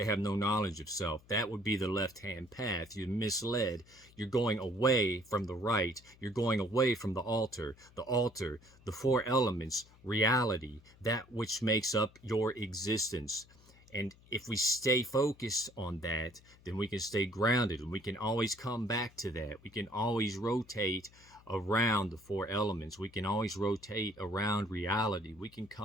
have no knowledge of self. That would be the left-hand path. You're misled. You're going away from the right. You're going away from the altar, the four elements, reality, that which makes up your existence. And if we stay focused on that, then we can stay grounded, and we can always come back to that. We can always rotate around the four elements. We can always rotate around reality. We can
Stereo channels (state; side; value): noise; left; hum, 26 dB below the sound